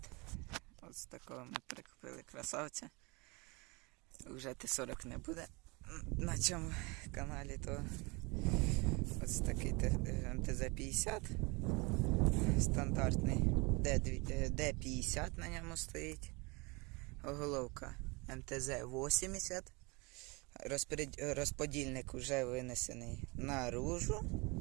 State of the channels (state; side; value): quieter; left; 27.7 dB